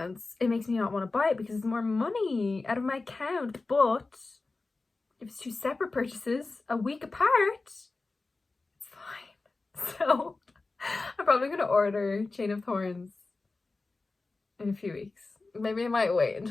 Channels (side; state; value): right; quieter; 3.6 dB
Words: it makes me not want to buy it because it's more money out of my account. But if it's 2 separate purchases a week apart, it's fine. So I'm probably going to order Chain of Thorns in a few weeks. Maybe I might wait